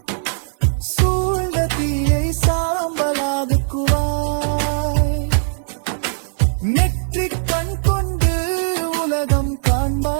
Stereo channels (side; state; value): left; silent; 60 dB below the other